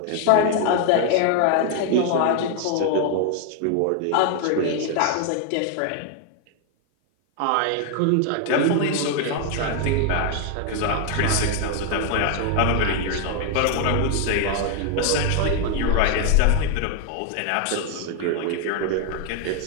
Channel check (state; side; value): different; both; correlation 0.01